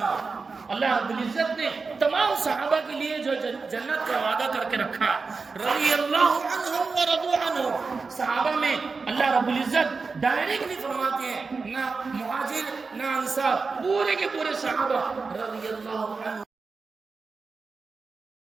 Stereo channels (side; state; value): left; quieter; 4.5 dB